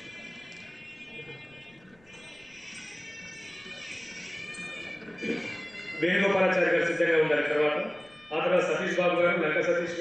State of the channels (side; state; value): left; noise; rumble, 30 dB below the sound